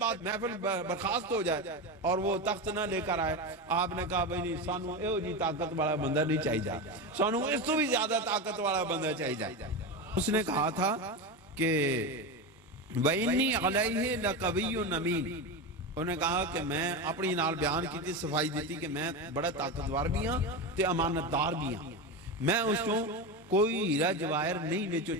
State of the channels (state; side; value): normal; both; correlation 0.18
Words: محفل برخاست ہو جائے اور وہ تخت نہ لے کر آئے۔ آپ نے کہا بھئی نہیں، سانو ایو جی طاقت والا بندہ نہیں چاہیے جا، سانو اس تو بھی زیادہ طاقت والا بندہ چاہیے جا۔ اس نے کہا تھا کہ وَإِنِّي عَلَيْهِ لَقَوِيٌّ أَمِينٌ، انہوں نے کہا کہ میں اپنی نال بیان کی تھی، صفائی دیتی کہ میں بڑا طاقتور بھی ہاں تے امانت دار بھی ہاں، میں اس کو کوئی ہیرا جواہر نہیں وچوں